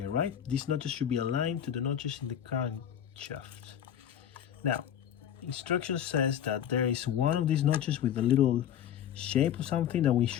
right? These notches should be aligned to the notches in the crankshaft. Now, instruction says that there is one of these notches with a little shape or something that we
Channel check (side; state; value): right; quieter; 9.8 dB